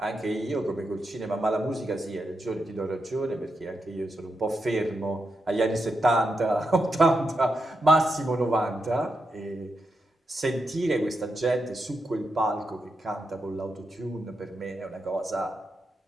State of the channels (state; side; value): normal; both; correlation 0.85